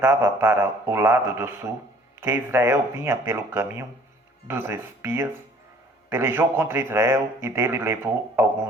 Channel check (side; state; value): both; normal; correlation 0.55